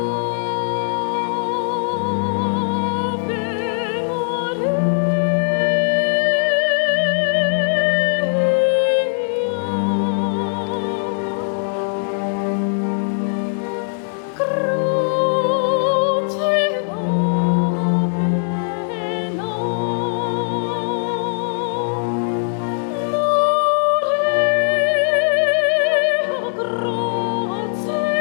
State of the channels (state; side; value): silent; right; digital silence